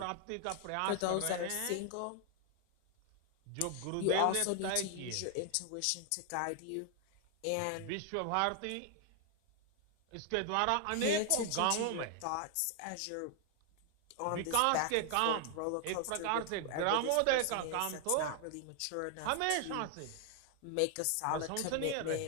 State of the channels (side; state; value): both; different; correlation 0.00